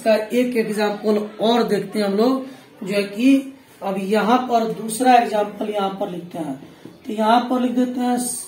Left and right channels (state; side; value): identical; both; correlation 1.00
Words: एक एग्जाम्पल और देखते हैं हम लोग, जो है कि अब यहाँ पर दूसरा एग्जाम्पल यहाँ पर लिखते हैं। तो यहाँ पर लिख देते हैं